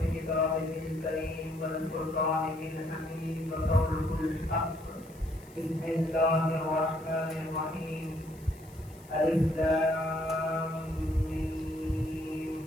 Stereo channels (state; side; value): noise; left; hiss, 24 dB below the sound